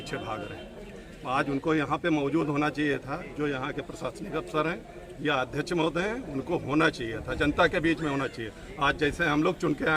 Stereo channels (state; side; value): identical; both; correlation 1.00